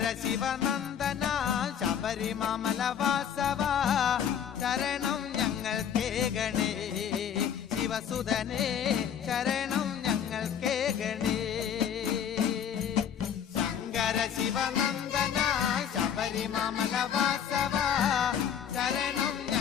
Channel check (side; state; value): right; quieter; 8.6 dB